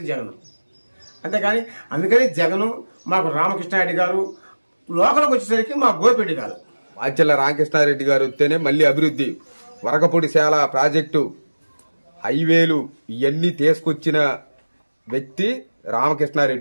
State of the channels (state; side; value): inverted; both; correlation -1.00